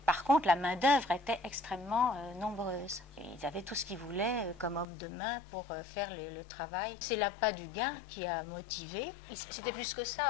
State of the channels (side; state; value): right; drops out; at 4.9 s